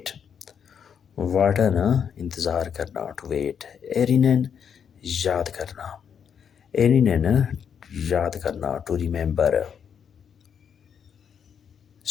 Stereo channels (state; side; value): quieter; right; 7.7 dB